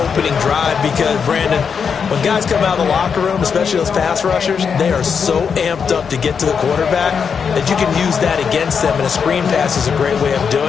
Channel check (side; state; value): right; quieter; 6.4 dB